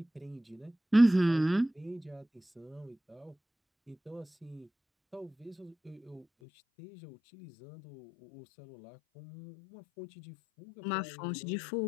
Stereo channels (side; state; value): right; drops out; at 6.2 s